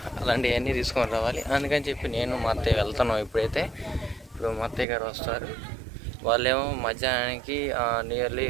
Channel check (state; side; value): drops out; left; at 4.9 s